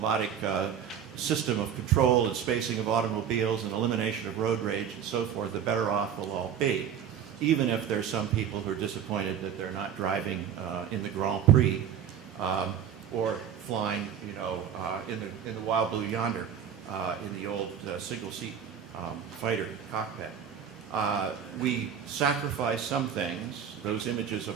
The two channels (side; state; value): left; quieter; 8.6 dB